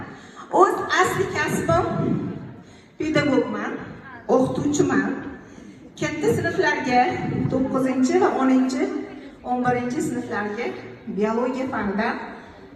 O'z asli kasbim pedagogman, o'qituvchiman. Katta sinflarga 9 va 11 sinflarga biologiya fanidan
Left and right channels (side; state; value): both; identical; correlation 1.00